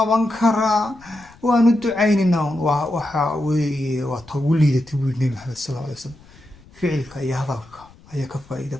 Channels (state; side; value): noise; left; rumble, 25 dB below the sound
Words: karaa? waanu ducaynaynaa. waxa weeye waa ta ugu liidatay buu Nabi Maxamed sallallahu alayhi wasallam. ficilka iyo hadalka ayaa ka faa'iido